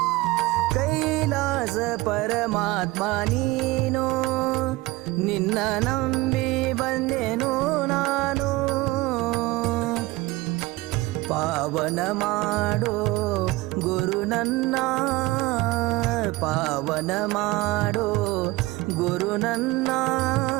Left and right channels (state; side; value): quieter; left; 20.2 dB